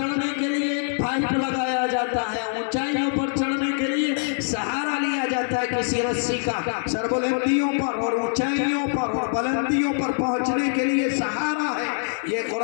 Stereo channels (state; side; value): silent; right; 63 dB below the other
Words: کے لیے ایک پائپ لگایا جاتا ہے، اونچائیوں پر چڑھنے کے لیے سہارا لیا جاتا ہے کسی رسی کا، سربلندیوں پر اور اونچائیوں پر اور بلندیوں پر پہنچنے کے لیے سہارا ہے یہ